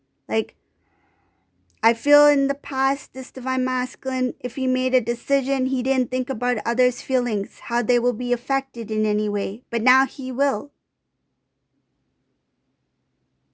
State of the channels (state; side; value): identical; both; correlation 1.00